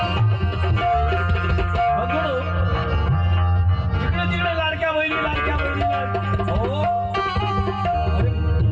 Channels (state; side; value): identical; both; correlation 1.00